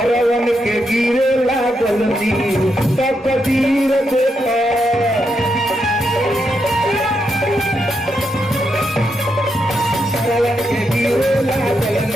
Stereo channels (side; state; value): both; normal; correlation 0.82